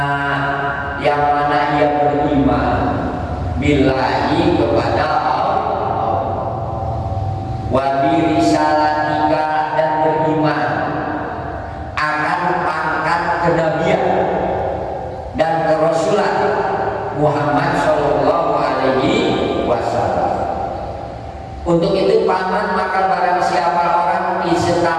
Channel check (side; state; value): both; identical; correlation 1.00